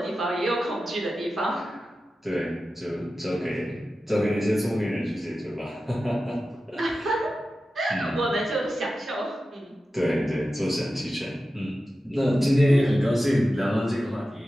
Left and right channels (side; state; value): both; normal; correlation 0.93